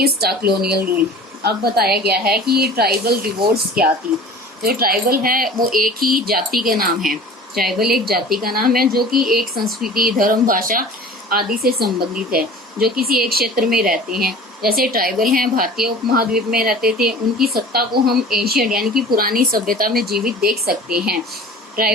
the colonial rule. अब बताया गया है कि ये tribal revolts क्या थी। जो tribal है वो एक ही जाति का नाम है। ट्राइबल एक जाति का नाम है जो कि एक संस्कृति, धर्म, भाषा आदि से संबंधित है, जो किसी एक क्षेत्र में रहते हैं। जैसे ट्राइबल हैं भारतीय उपमहाद्वीप में रहते थे, उनकी सत्ता को हम एशियन यानी कि पुरानी सभ्यता में जीवित देख सकते हैं।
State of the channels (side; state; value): both; normal; correlation 0.42